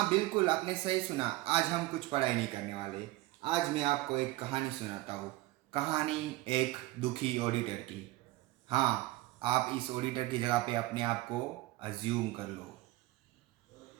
बिल्कुल, आपने सही सुना। आज हम कुछ पढ़ाई नहीं करने वाले। आज मैं आपको एक कहानी सुनाता हूँ। कहानी एक दुखी ऑडिटर की। हाँ, आप इस ऑडिटर की जगह पे अपने आप को अज्यूम कर लो।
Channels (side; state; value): left; quieter; 18.4 dB